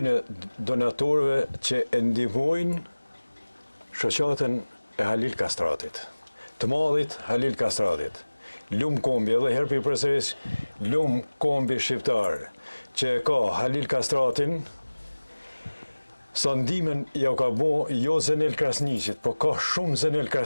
donatorëve që e ndihmojnë shoqatën e Halil Kastratit. Të madhit Halil Kastratit. Lum kombi, edhe herë për përsëris, lum kombi shqiptar që e ka Halil Kastratin, sa ndimen ja ka bo jo Zenel Krasniqit, po ka shumë Zenel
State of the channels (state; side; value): inverted; both; correlation -1.00